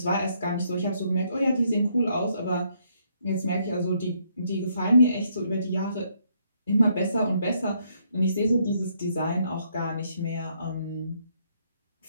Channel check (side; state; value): both; inverted; correlation -0.72